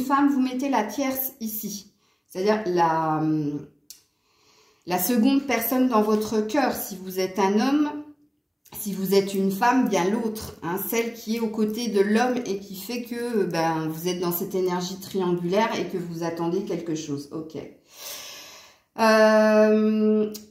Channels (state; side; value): identical; both; correlation 1.00